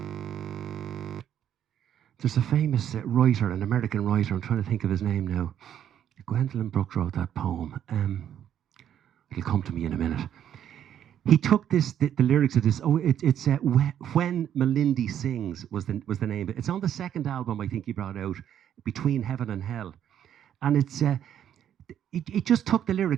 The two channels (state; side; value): quieter; left; 10.0 dB